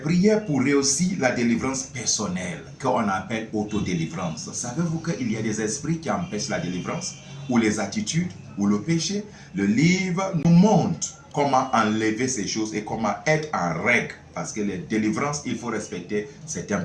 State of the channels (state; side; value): identical; both; correlation 1.00